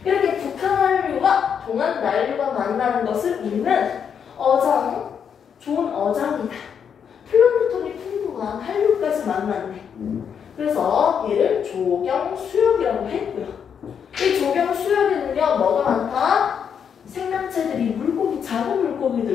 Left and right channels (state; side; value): quieter; right; 7.5 dB